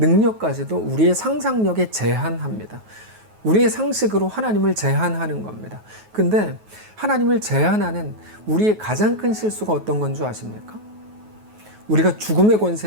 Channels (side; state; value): left; late; 9.4 ms